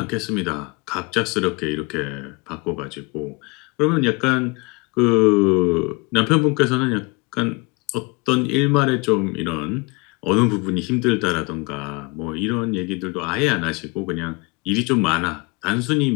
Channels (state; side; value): quieter; right; 27.9 dB